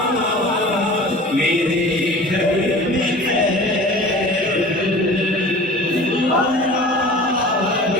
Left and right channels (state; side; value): normal; both; correlation 0.41